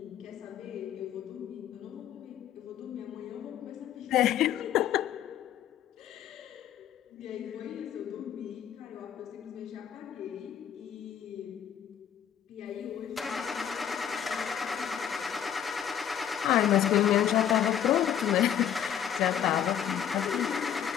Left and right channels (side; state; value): right; quieter; 9.5 dB